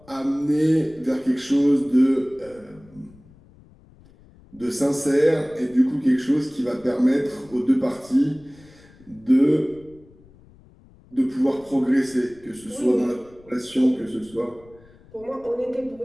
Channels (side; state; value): left; noise; rumble, 26 dB below the sound